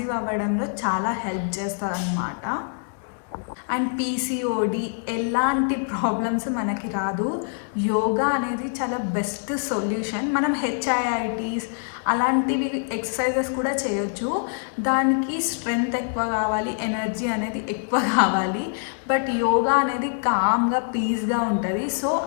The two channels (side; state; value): right; silent; digital silence